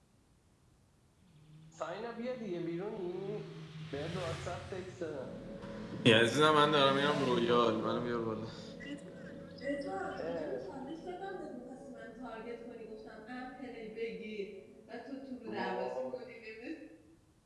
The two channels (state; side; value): identical; both; correlation 1.00